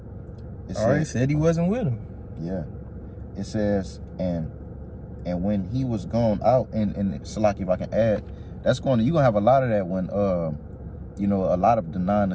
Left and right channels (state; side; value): identical; both; correlation 1.00